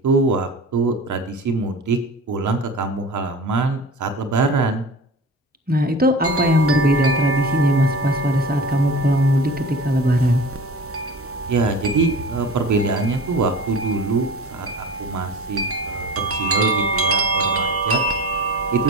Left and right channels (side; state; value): both; normal; correlation 0.36